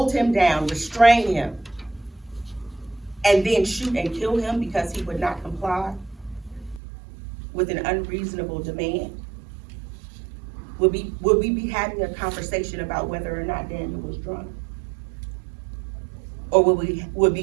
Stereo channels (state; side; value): drops out; left; at 6.8 s